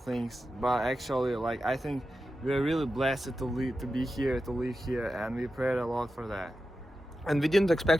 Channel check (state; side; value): normal; both; correlation 0.91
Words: but actually like I think we're really blessed to be here, to live here, and we prayed a lot for that. And we didn't